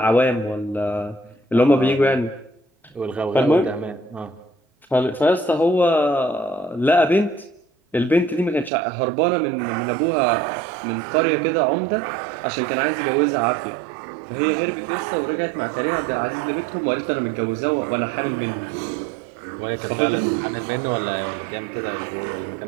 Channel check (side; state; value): left; drops out; at 8.7 s